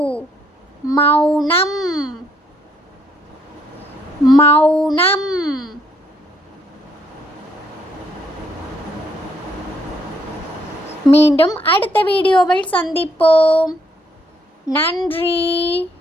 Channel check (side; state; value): both; normal; correlation 0.70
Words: மௌனம், மௌனம். மீண்டும் அடுத்த வீடியோவில் சந்திப்போம். நன்றி.